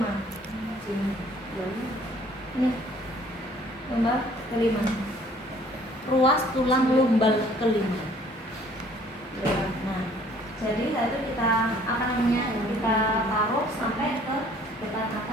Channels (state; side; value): normal; both; correlation 0.57